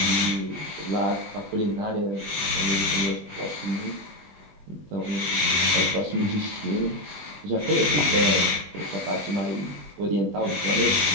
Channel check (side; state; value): left; late; 20 ms